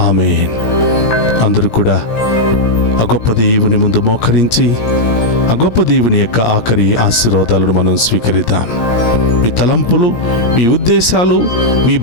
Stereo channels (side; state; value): right; late; 17 ms